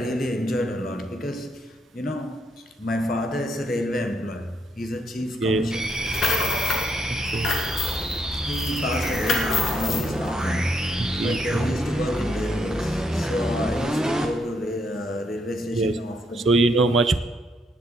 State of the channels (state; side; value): normal; both; correlation 0.75